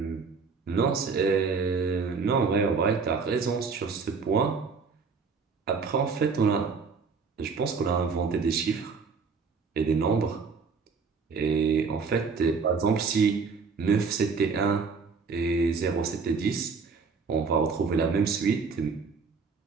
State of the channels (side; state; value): left; quieter; 5.1 dB